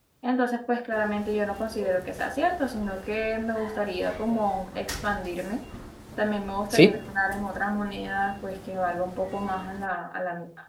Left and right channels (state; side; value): identical; both; correlation 1.00